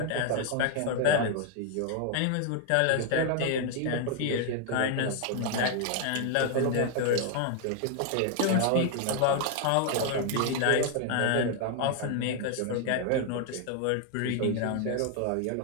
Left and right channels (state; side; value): different; both; correlation 0.00